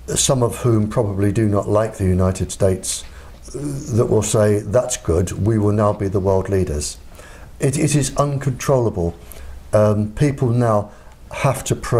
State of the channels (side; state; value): both; identical; correlation 1.00